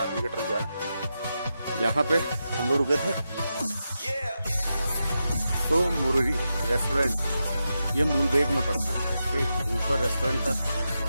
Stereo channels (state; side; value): inverted; both; correlation -0.88